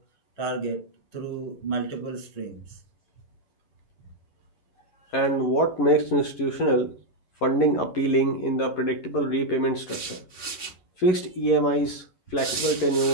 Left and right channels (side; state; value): right; late; 11 ms